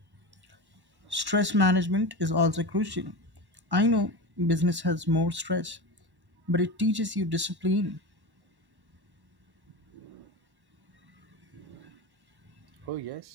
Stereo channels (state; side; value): late; left; 1.1 ms